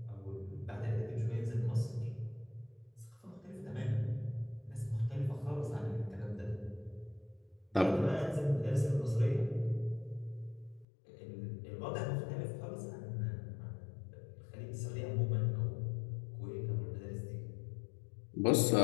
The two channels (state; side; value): drops out; right; at 10.9 s